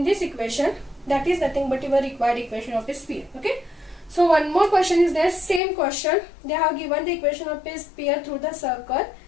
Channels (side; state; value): right; drops out; at 5.6 s